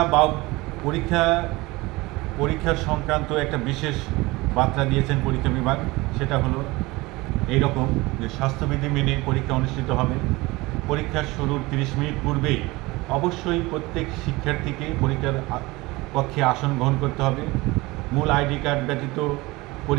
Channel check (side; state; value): left; quieter; 21.8 dB